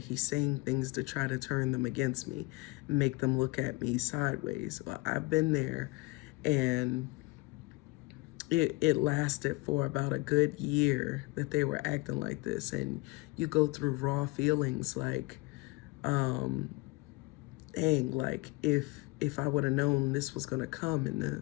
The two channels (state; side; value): quieter; right; 24.1 dB